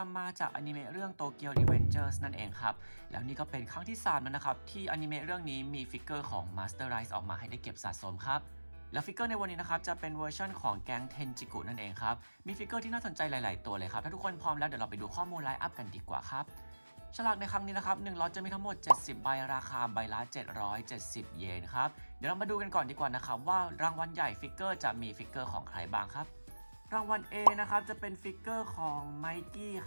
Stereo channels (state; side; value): inverted; both; correlation -1.00